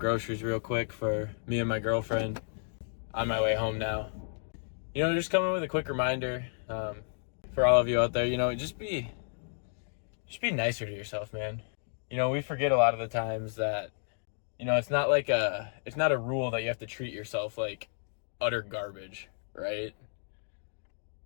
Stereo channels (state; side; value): silent; right; digital silence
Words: real quick for me and my girlfriend. On my way home now. Just coming with a quick reminder for all of you out there. Just be nicer to yourself, man. We forget a lot of the times that it's not a rule that you have to treat yourself like utter garbage, right?